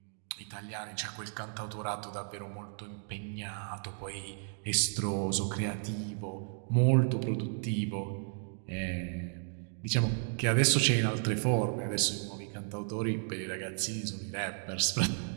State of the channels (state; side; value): silent; left; 55 dB below the other